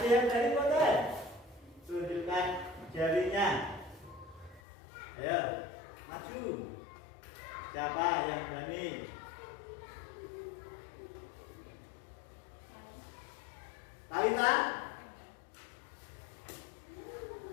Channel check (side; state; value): right; drops out; at 4.6 s